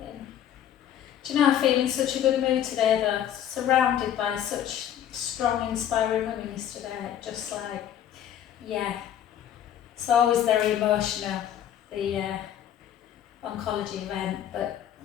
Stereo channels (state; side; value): quieter; right; 10.4 dB